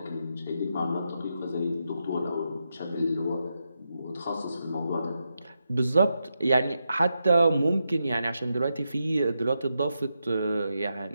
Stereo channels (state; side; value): inverted; both; correlation -0.86